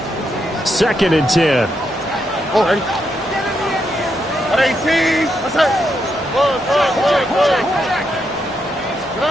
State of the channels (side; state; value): both; normal; correlation 0.81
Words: 2nd and 10. Oh, ready? 18. What's that?